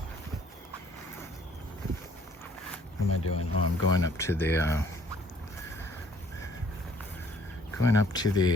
What am I doing? Oh, I'm going up to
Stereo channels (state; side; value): normal; both; correlation 0.60